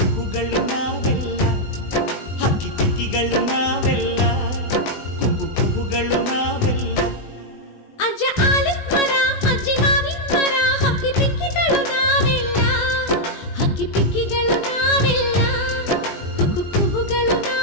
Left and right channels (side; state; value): right; late; 20 ms